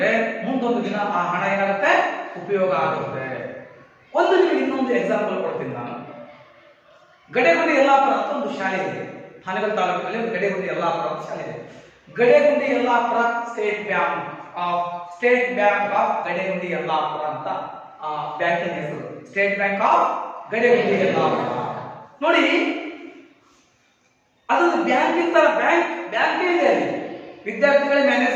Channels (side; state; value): both; identical; correlation 1.00